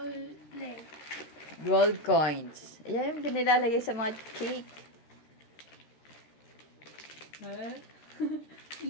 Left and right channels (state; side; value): late; right; 13 ms